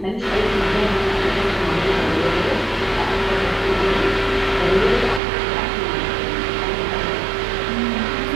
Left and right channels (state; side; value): drops out; left; at 5.2 s